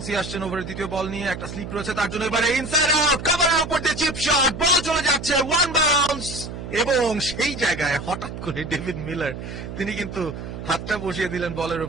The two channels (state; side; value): noise; right; hum, 9 dB below the sound